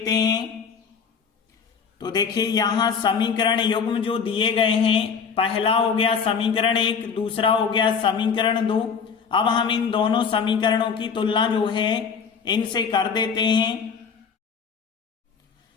हैं। तो देखिए, यहाँ समीकरण युग्म जो दिए गए हैं, पहला हो गया समीकरण 1, दूसरा हो गया समीकरण 2। अब हम इन दोनों समीकरणों की तुलना जो है इनसे कर देते हैं।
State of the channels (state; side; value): quieter; right; 6.2 dB